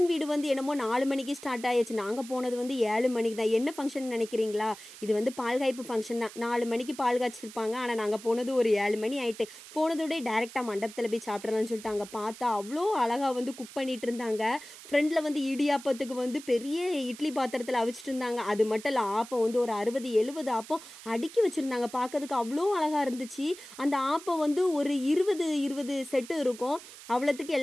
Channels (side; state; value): right; noise; hiss, 16 dB below the sound